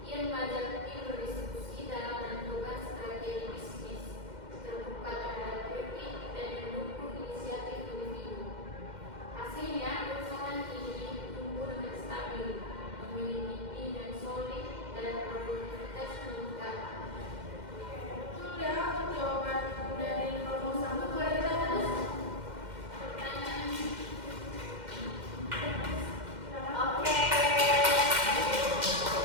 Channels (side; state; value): left; late; 2.1 ms